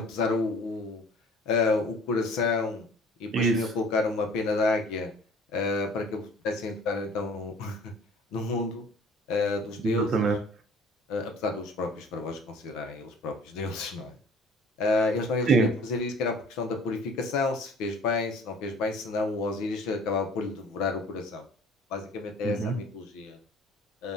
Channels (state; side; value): normal; both; correlation 0.49